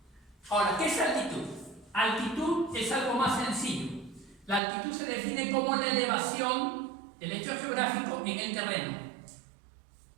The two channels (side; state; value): left; drops out; at 4.6 s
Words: Ahora, ¿qué es altitud? Altitud es algo más sencillo. La altitud se define como la elevación del hecho geográfico en el terreno.